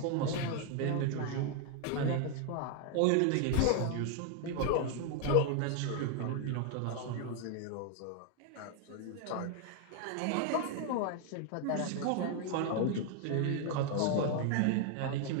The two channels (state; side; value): different; both; correlation 0.01